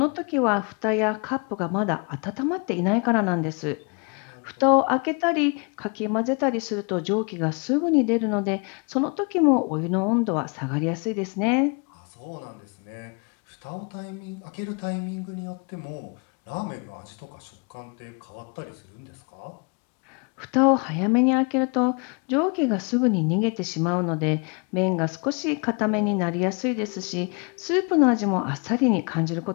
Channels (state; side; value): quieter; right; 33.9 dB